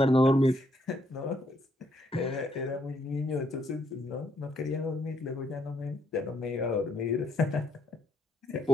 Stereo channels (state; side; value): normal; both; correlation 0.72